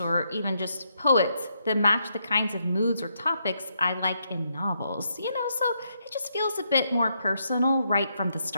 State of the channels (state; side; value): inverted; both; correlation -0.78